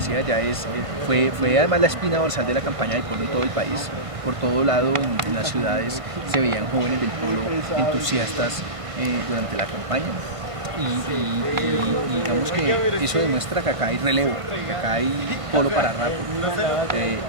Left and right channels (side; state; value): left; late; 1.5 ms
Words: ya fue además la espina dorsal de la campaña del Polo en todo el país. Por todo lado, en las ciudades se veían jóvenes del Polo entusiastas durante la campaña. Y digamos que eso demuestra que acá hay relevo, que acá hay Polo para rato,